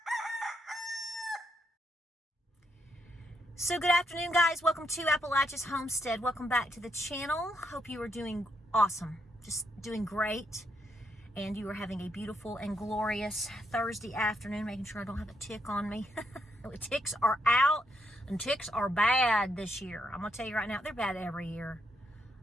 So good afternoon, guys. Welcome to Appalachia's Homestead. Welcome back to the channel. Hope you are doing awesome. Just doing great. And you are having a beautiful and glorious Thursday afternoon. Making sure I don't have a tick on me. Ticks are out and ticks are bad this year. I'm going to tell you right now, they're bad every year.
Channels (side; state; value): both; normal; correlation 0.77